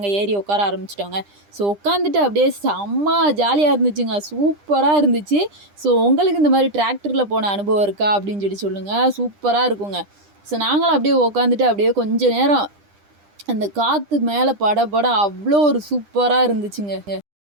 ஏறி உட்கார ஆரம்பிச்சிட்டோங்க. ஸோ உட்காந்துட்டு அப்படியே செம்ம ஜாலியாக இருந்துச்சுங்க, சூப்பராக இருந்துச்சு. ஸோ உங்களுக்கு இந்த மாதிரி டிராக்டரில் போன அனுபவம் இருக்கா அப்படின்னு சொல்லுங்கள். சூப்பராக இருக்குங்க. ஸோ நாங்களும் அப்படியே உட்காந்துட்டு அப்படியே கொஞ்சம் நேரம் அந்த காற்று மேலே பட அவ்வளோ ஒரு சூப்பராக இருந்துச்சுங்க.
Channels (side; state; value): left; late; 10 ms